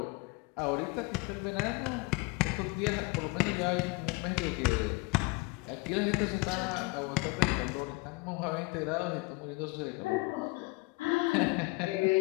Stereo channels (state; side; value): quieter; right; 26.0 dB